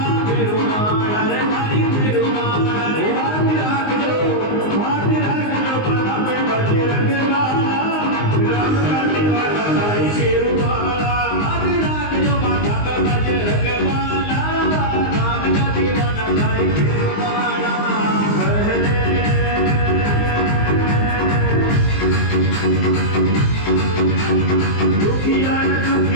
रे तारी पेरुवाला रे आज राखजो बाला पे बजे रंगवाला राम का दीवाना तारी पेरुवाला आज राखजो माथा पे बजे रंगवाला राम का दीवाना तारी पेरुवाला दुखिया न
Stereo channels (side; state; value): right; late; 19 ms